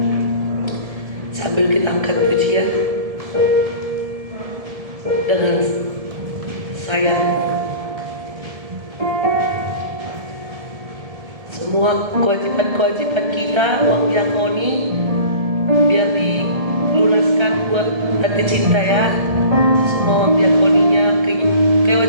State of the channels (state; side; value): late; left; 1.7 ms